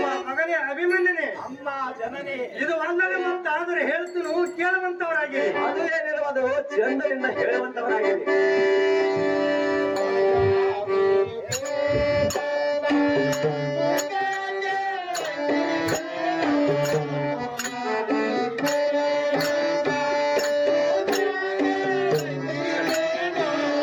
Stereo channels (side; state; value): both; identical; correlation 1.00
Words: ಮಗನೇ ಅಭಿಮನ್ಯನೇ ಅಮ್ಮ ಜನನೇ ಇದು ಅಲ್ಲದೆ ಮತ್ತಾದರೆ ಹೇಳ್ತೀನಿ ಕೇಳುವಂತವರಾಗಿ ಅದು ಏನಿರುವುದು ಚಂದನಿಂದ ಹೇಳುವಂತವರಾಗಿದೆ